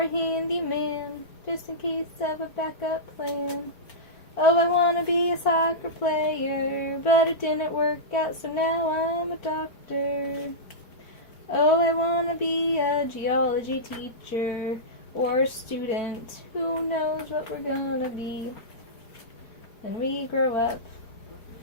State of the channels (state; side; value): late; right; 4.5 ms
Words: a handyman, just in case of a backup plan. Oh, I want to be a soccer player, but it didn't work out, so now I'm a doctor. Oh, I want to be a geology teacher or a student. Who knows what we're gonna be when we grow up?